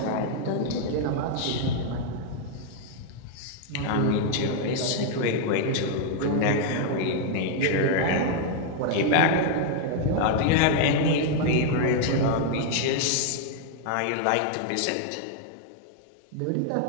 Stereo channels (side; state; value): both; different; correlation 0.00